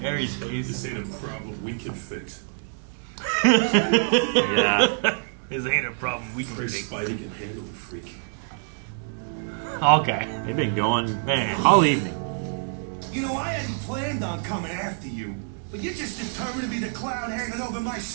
Harry's face. This ain't a problem we can fix. Yeah. This ain't a problem we can Chris fix. Spidey can handle the freak. Okay. They've been going Man. all evening. You know, I hadn't planned on coming after you, but you're just determined to be the cloud hanging over my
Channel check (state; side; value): silent; left; digital silence